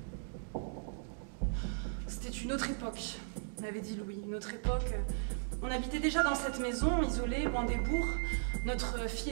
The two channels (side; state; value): left; silent; digital silence